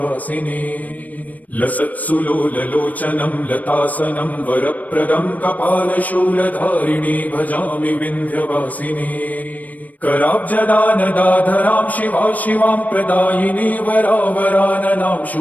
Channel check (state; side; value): late; right; 0.075 ms